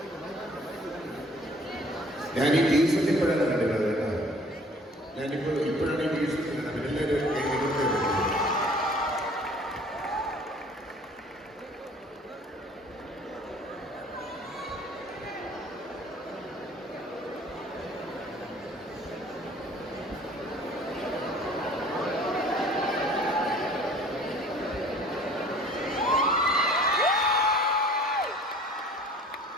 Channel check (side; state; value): both; normal; correlation 0.52